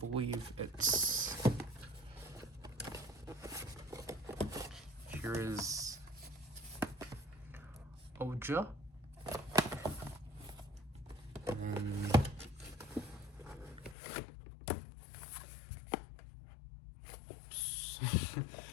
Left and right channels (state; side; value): drops out; right; at 14.0 s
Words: it's, here is Oja. And